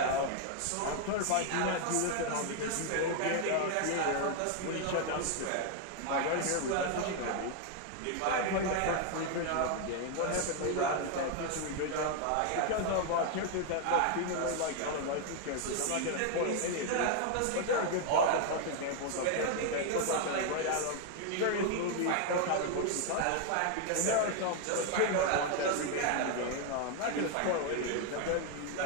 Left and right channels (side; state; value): both; different; correlation 0.00